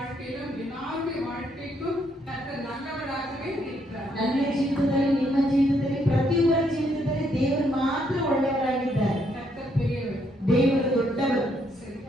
எல்லாருடைய வாழ்க்கைக்கும் கர்த்தர் நல்லவராகவே இருக்கிறார். ನನ್ನ ಜೀವಿತದಲ್ಲಿ, ನಿಮ್ಮ ಜೀವಿತದಲ್ಲಿ, ಪ್ರತಿಯೊಬ್ಬರ ಜೀವಿತದಲ್ಲಿ ದೇವರು ಮಾತ್ರ ಒಳ್ಳೆಯವರಾಗಿದ್ದಾರೆ. கர்த்தர் பெரியவர், ದೇವರು ದೊಡ್ಡವರು. சரி,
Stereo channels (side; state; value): both; normal; correlation 0.73